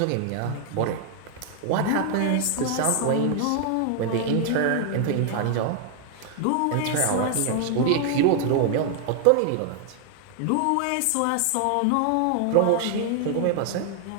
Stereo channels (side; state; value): both; different; correlation 0.00